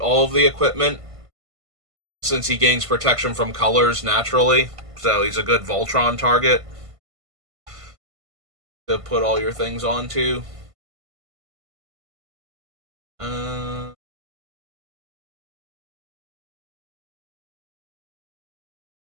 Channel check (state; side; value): late; left; 1.5 ms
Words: of the equipment since he gains protection from colors naturally. So he's a good Voltron target to put all your things onto. Uh,